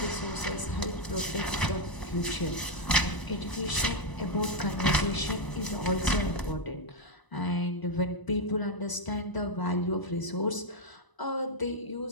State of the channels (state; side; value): late; right; 1.0 ms